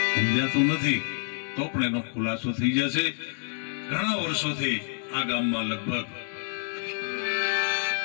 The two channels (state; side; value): silent; right; digital silence